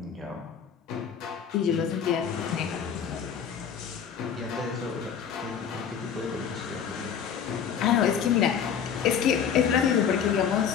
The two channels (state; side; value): quieter; right; 7.7 dB